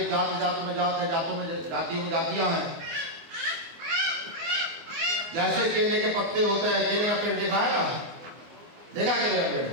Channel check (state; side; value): late; left; 24 ms